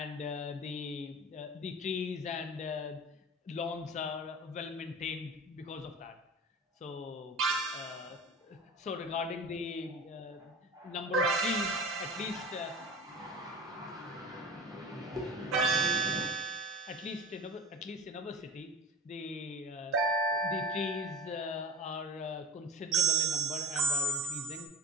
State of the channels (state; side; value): normal; both; correlation 0.35